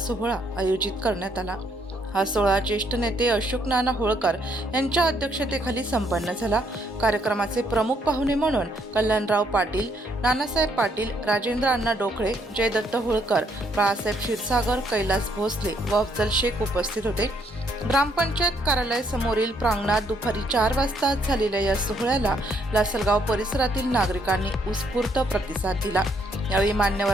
आयोजित करण्यात आला। हा सोहळा ज्येष्ठ नेते अशोक नाना होळकर यांच्या अध्यक्षतेखाली संपन्न झाला। कार्यक्रमाचे प्रमुख पाहुणे म्हणून कल्याणराव पाटील, नानासाहेब पाटील, राजेंद्र अण्णा डोकळे, जयदत्त होळकर, बाळासाहेब क्षीरसागर, कैलास भोसले व अफजल शेख उपस्थित होते। ग्रामपंचायत कार्यालय समोरील प्रांगणात दुपारी 4 वाजता झालेल्या या सोहळ्याला लासलगाव परिसरातील नागरिकांनी उत्स्फूर्त प्रतिसाद दिला। यावेळी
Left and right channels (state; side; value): normal; both; correlation 0.71